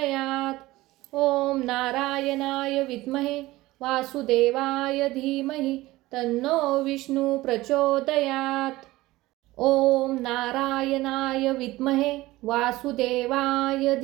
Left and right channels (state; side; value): quieter; left; 18.4 dB